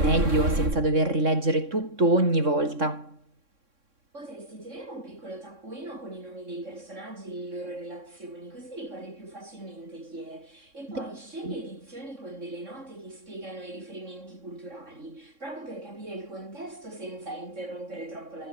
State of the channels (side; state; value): left; late; 3.6 ms